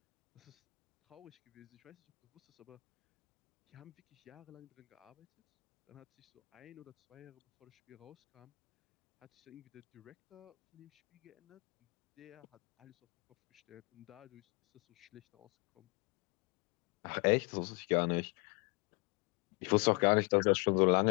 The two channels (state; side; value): quieter; right; 30.3 dB